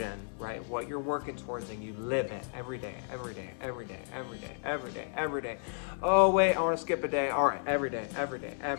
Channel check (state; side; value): silent; right; digital silence